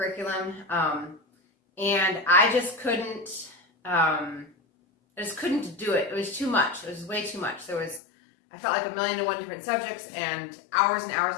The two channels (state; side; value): drops out; right; at 8.0 s